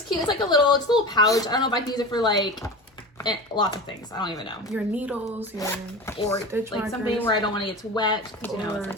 cute. It's like a little pouch. I don't know if I can use it for like lots of things. I don't even know. Your needles, your or stitch like markers, something where I don't want to get too wet because you know it's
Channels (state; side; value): normal; both; correlation 0.30